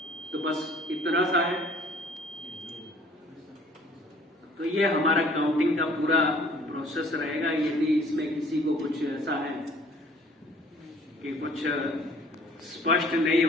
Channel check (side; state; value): both; normal; correlation 0.55